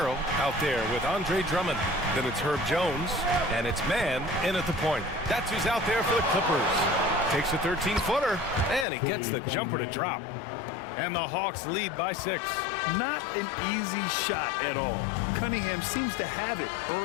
out there with Andre Drummond. Then it's Herb Jones, and it's Mann in at the point. That's who's out there for the Clippers. Takes a 13-footer, and he gets the jumper to drop. And the Hawks lead by 6. Not an easy shot at all. Cunningham seems to have it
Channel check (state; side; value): drops out; right; at 8.8 s